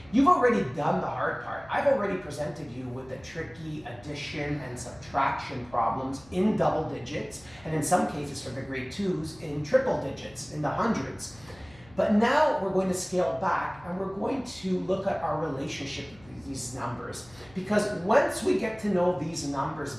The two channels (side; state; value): left; noise; hum, 25 dB below the sound